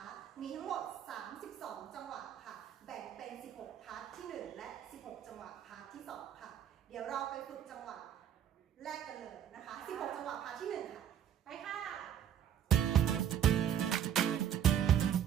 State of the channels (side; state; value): left; quieter; 9.6 dB